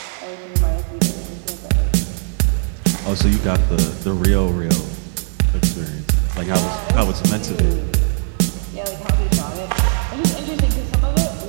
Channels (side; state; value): left; silent; 59 dB below the other